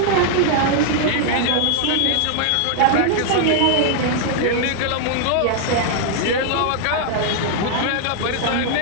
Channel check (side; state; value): both; different; correlation -0.01